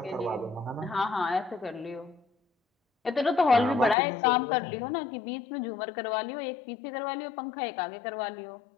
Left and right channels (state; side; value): drops out; right; at 4.0 s